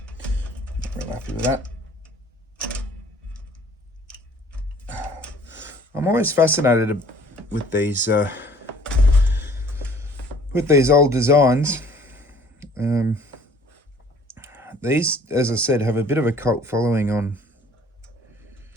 Not real happy with that. I'm always fascinated with these old designs. These, as I said, have a bit of a cult following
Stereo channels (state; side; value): normal; both; correlation 0.54